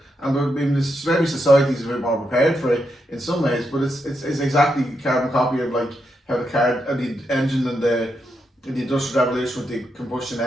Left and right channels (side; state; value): both; normal; correlation 0.83